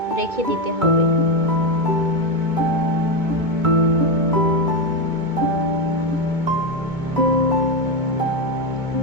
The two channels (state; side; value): late; left; 2.2 ms